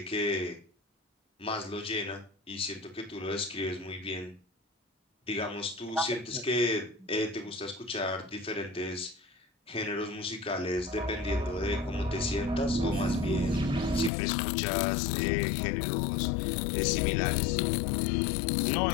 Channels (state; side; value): drops out; right; at 14.1 s